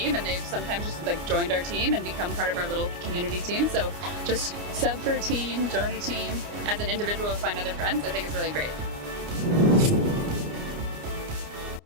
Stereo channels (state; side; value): late; left; 29 ms